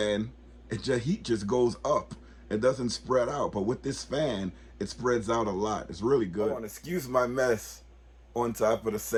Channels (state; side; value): identical; both; correlation 1.00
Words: heat just goes up. It doesn't spread out. But with this fan, it spreads out a lot. It's really good. I want to excuse my mess on top of the